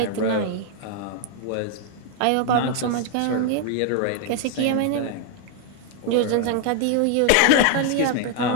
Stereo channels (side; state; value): both; different; correlation 0.00